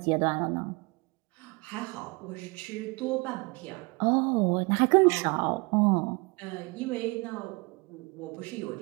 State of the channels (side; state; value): left; quieter; 27.8 dB